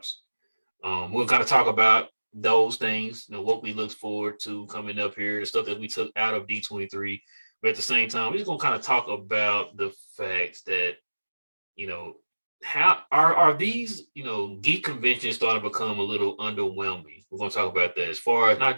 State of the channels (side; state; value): both; inverted; correlation -1.00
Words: We'll kind of talk about those things, what we look forward to coming up here, the stuff that we took out of D23. But at the same time, we're just gonna kind of talk about the fact that, you know, how are these, geek conventions starting to become a little underwhelming? We're gonna talk about that as far as not